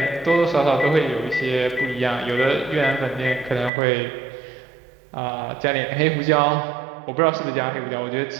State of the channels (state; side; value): drops out; left; at 3.7 s